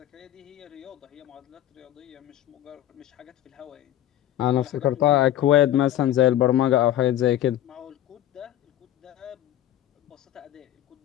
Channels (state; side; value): quieter; right; 12.5 dB